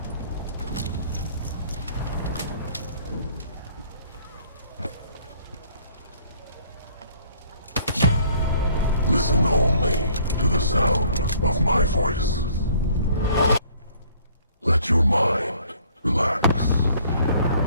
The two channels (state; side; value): inverted; both; correlation -0.59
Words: Listen only to the sound of my voice. Let your mind relax.